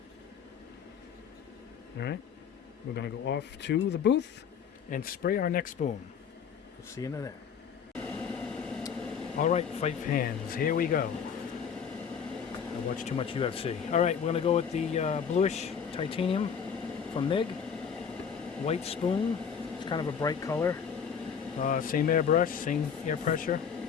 All right, we're gonna go off to the booth and spray our next spoon. We'll see you in there. All right, five hands, here we go. I watch too much UFC. All right, we're gonna go with the bluish titanium from Mig. White spoon. It's kind of a bright color. Same airbrush, same air pressure,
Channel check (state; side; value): quieter; right; 7.2 dB